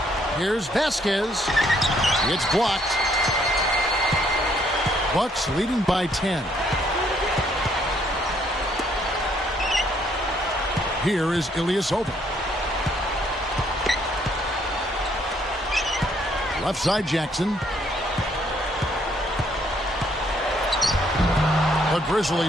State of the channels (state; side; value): normal; both; correlation 0.68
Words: Here's Vasquez. It's blocked. Bucks leading by 10. Here is Ilyasova. Left side Jackson. The